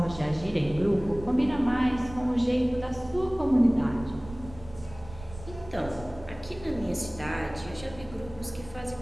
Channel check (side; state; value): right; noise; rumble, 16 dB below the sound